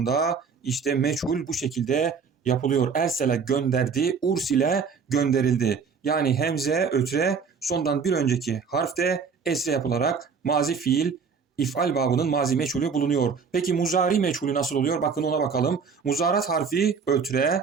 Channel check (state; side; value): quieter; left; 5.8 dB